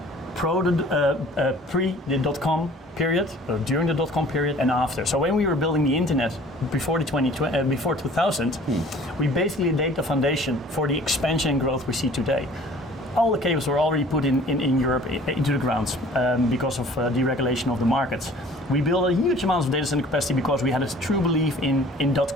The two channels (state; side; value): normal; both; correlation 0.50